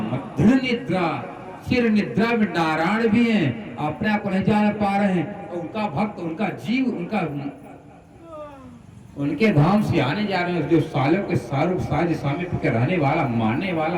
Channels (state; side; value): identical; both; correlation 1.00